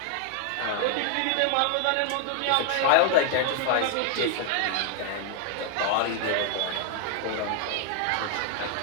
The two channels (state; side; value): different; both; correlation 0.00